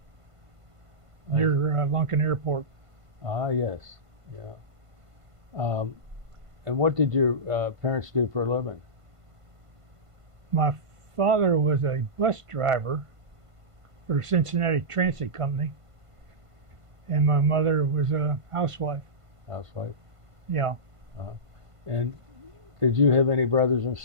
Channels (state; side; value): late; left; 1.5 ms